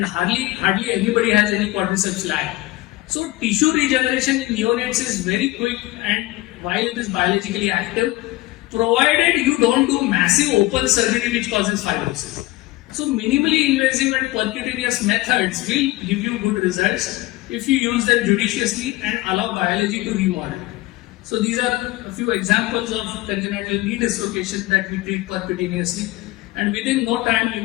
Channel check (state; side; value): quieter; right; 19.1 dB